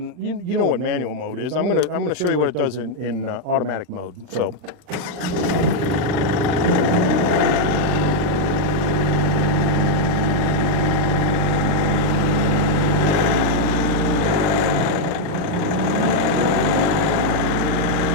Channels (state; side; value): late; left; 40 ms